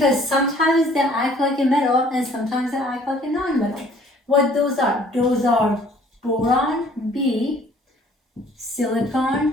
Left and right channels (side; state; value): both; normal; correlation 0.56